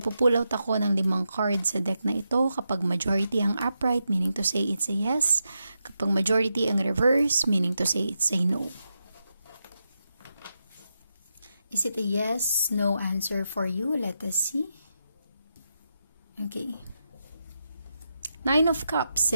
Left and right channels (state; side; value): inverted; both; correlation -0.86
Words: out ako ng 5 cards sa deck na ito. Kapag majority ang upright, meaning to say it's a yes. Kapag majority ang reverse, meaning to say it's a no. Is it a yes, no answer for you? Let us see. Okay. 9 of Cups,